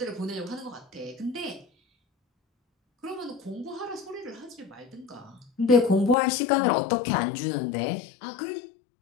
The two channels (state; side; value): drops out; right; at 6.2 s